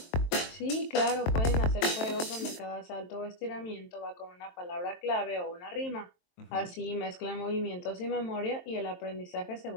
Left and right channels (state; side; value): late; right; 23 ms